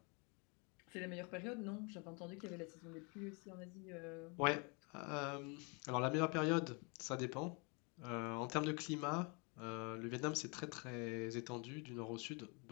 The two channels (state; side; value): quieter; right; 32.5 dB